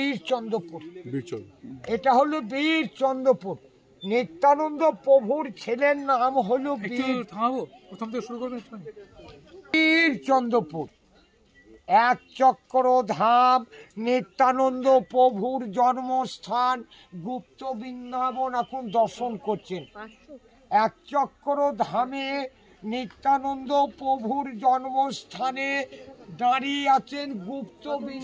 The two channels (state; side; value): identical; both; correlation 1.00